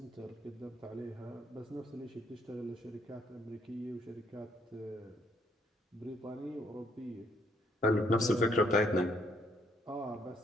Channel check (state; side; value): normal; both; correlation 0.70